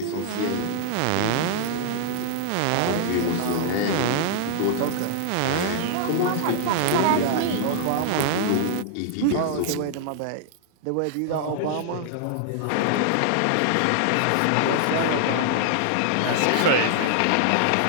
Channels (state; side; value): different; both; correlation -0.01